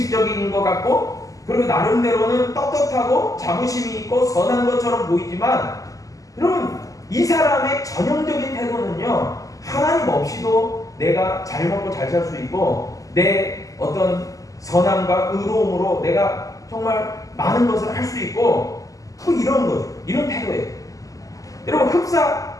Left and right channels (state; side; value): late; right; 0.17 ms